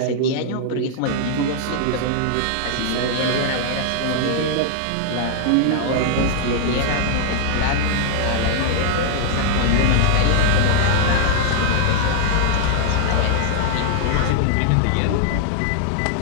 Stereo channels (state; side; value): different; both; correlation -0.01